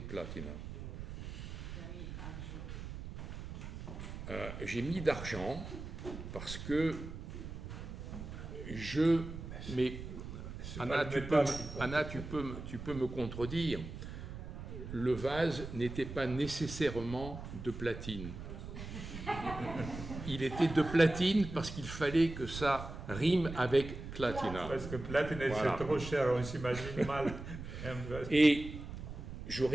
platina. J'ai mis d'argent parce que mais Anna, tu peux me contredire. Le vase n'était pas nécessairement de platine. Il était de platine parce qu'il fallait que ça rime avec clatina. Parce que platine, voilà. C'est trop cher, on s'imagine mal. Et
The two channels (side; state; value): right; noise; rumble, 9 dB below the sound